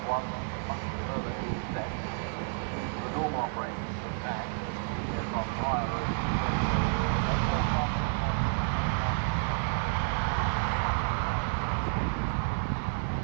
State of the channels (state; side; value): silent; left; 58 dB below the other